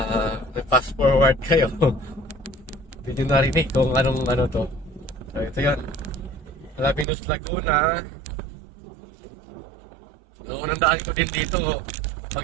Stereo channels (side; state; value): left; drops out; at 7.1 s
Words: may fast forward kayo. Hindi nyo narinig kung anong to. So, ito yan. Alaminos Laguna. So, unang daan ko din dito.